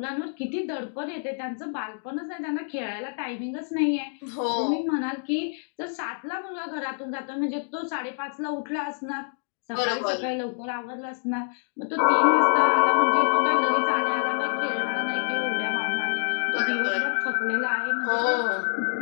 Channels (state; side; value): silent; right; digital silence